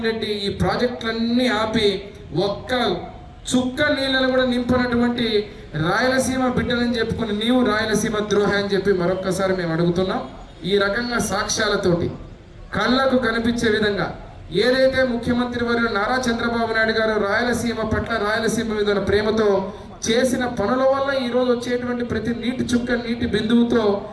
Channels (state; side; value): identical; both; correlation 1.00